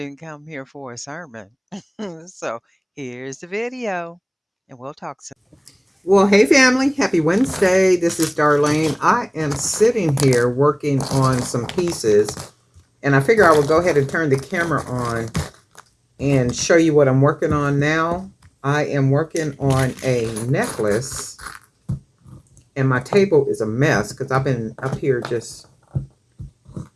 come here for a sermon. So here's the video, and we'll talk soon. Well, hey family, happy Wednesday. This is Darlene. I am sitting here working on some pieces, and I figure I will go ahead and turn the camera on and show you what I'm working on now. I am working on a necklace, and my table is a mess because I've been up here just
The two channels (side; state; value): both; identical; correlation 1.00